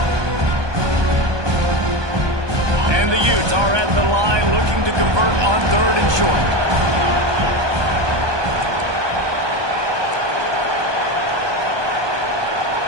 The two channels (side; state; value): left; late; 1.2 ms